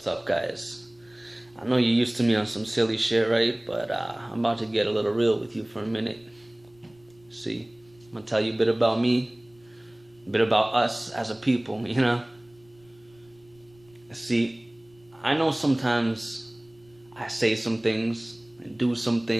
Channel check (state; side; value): noise; left; rumble, 30 dB below the sound